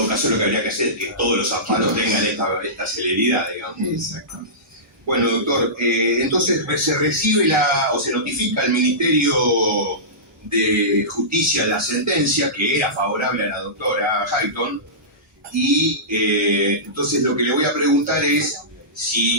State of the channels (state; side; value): normal; both; correlation -0.20